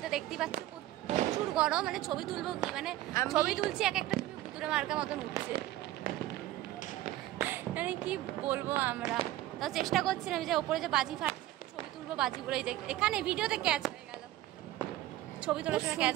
দেখতে পাচ্ছি প্রচুর গরম, মানে ছবি তুলবো কি, মানে ছবি তুলছি এক একটা ছবি ভুতুরে মার্কা মতন উঠছে, মানে কি বলবো। আমরা তাও চেষ্টা করছিলাম যে ওপরে যে বাজি ফাটছে ছবি তুলবো, বাজিগুলো এই যে এখানে ভিডিওতে ক্যাচ হয়ে গেল, ছবি তোলার সময় ক্যাচ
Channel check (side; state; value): left; quieter; 14.9 dB